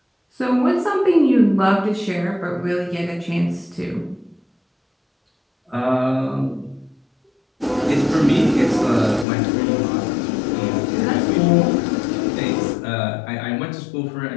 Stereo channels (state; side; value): drops out; right; at 9.2 s